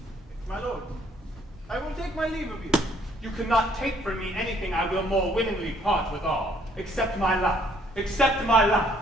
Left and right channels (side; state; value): both; normal; correlation 0.64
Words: My lord, I will take my leave of you. You cannot take from me anything I will more willingly part withal, except my life. Except my life.